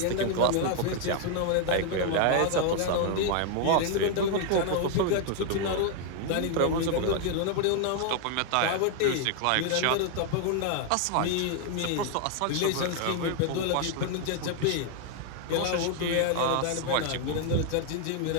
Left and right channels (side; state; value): both; different; correlation 0.00